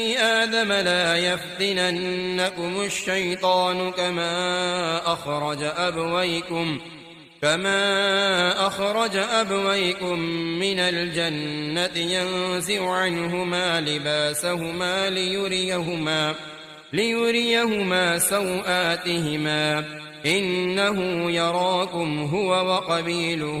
آدم لا يفتننكم الشيطان كما أخرج أبويكم من الجنة ينزع عنهما لباسهما ليريهما سوآتهما إنه يراكم هو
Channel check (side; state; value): both; identical; correlation 1.00